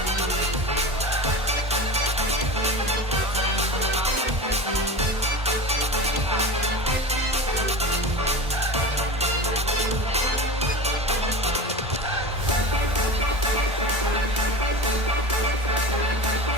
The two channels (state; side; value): normal; both; correlation 0.29